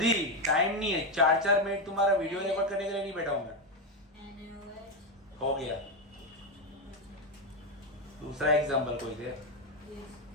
टाइम नहीं है. 4-4 मिनट तुम्हारा वीडियो रिकॉर्ड करने के लिए नहीं बैठा हूं मैं. हो गया. दूसरा एग्जांपल कोई दे.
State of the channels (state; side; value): normal; both; correlation 0.08